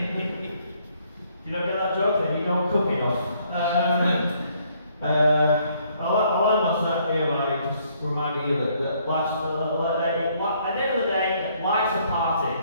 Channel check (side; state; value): both; inverted; correlation -0.67